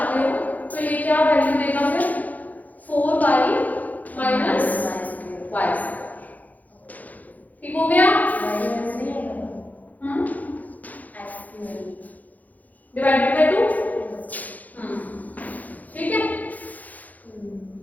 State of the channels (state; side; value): late; right; 0.079 ms